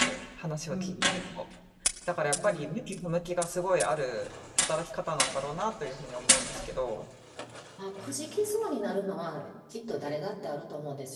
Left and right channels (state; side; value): identical; both; correlation 1.00